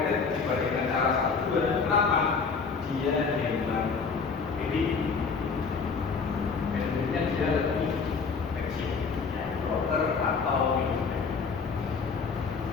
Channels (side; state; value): right; quieter; 5.2 dB